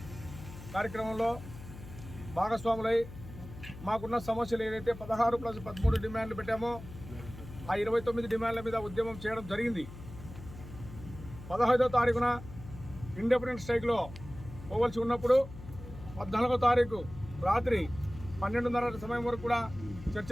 కార్యక్రమంలో భాగస్వాములై మాకున్న సమస్యలు ఏదైతే 16+13 డిమాండ్లు పెట్టామో ఆ 29 డిమాండ్ల మీద ఉద్యమం చేయడం జరిగింది. 15వ తారీఖున ఇండిపెండెన్స్ స్ట్రైక్లో పోవలసి ఉన్నప్పుడు 14వ తారీఖు రాత్రి 12:30 సమయం వరకు కూడా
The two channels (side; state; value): left; noise; hum, 14 dB below the sound